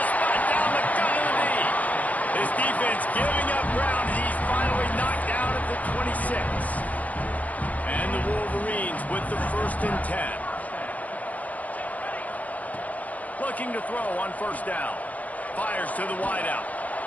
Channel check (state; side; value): late; right; 0.074 ms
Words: spot down the gut of the knee. His defense giving up ground. He's finally knocked down at the 26. And the Wolverines with the 1st and 10. Looking to throw on first down. Fires to the wideout.